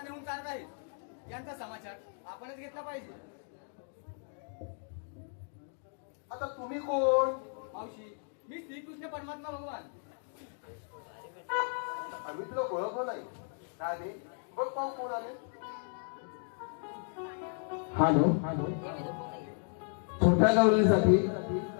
नेऊन चालत आहेत यांचा समाचार आपणच घेतला पाहिजे. आता तुम्ही कोण? मावशी मी श्रीकृष्ण परमात्मा भगवान. आम्ही तुला ओळखलं नाही. आले बघ पाहू कोण आले. हॅलो छोट्या गावलीसाठी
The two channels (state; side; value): silent; right; 55 dB below the other